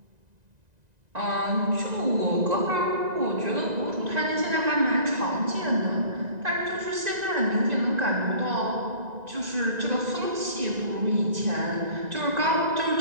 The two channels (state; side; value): late; left; 1.9 ms